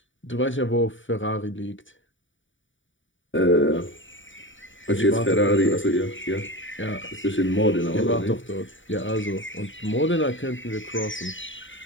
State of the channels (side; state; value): right; late; 0.56 ms